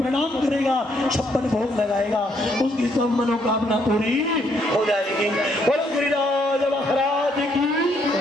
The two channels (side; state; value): both; normal; correlation 0.71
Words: करेगा, 56 भोग लगाएगा, उसकी सब मनोकामना पूरी हो जाएगी। बोलो गिरिराज महाराज की,